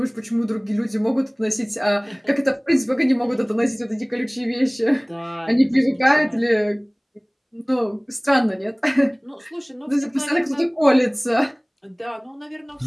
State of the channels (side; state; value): both; identical; correlation 1.00